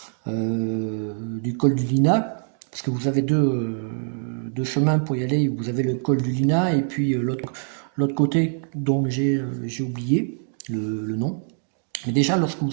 du col du Lina, parce que vous avez deux chemins pour y aller, vous avez le col du Lina et puis l'autre côté dont j'ai oublié le nom. Mais déjà, lorsque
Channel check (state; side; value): silent; left; digital silence